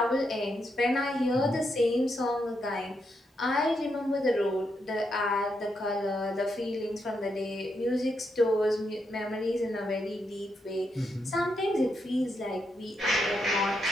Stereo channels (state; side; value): normal; both; correlation 0.81